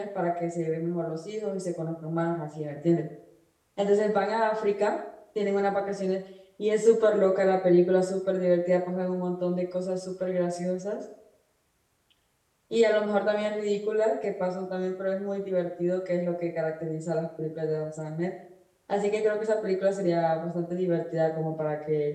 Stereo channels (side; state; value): both; identical; correlation 1.00